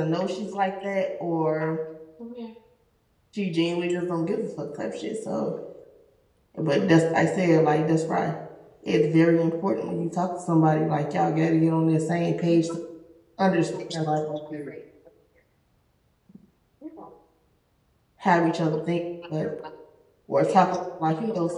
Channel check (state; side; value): identical; both; correlation 1.00